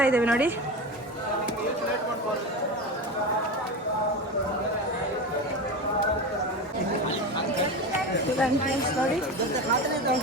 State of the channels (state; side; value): normal; both; correlation 0.24